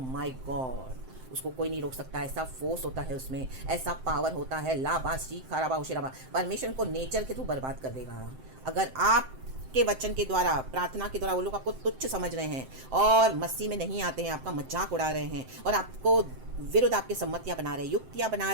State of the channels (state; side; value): late; left; 7.7 ms